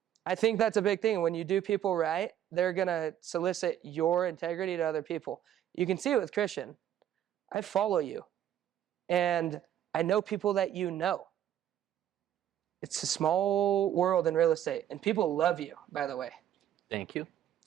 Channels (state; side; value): quieter; left; 10.9 dB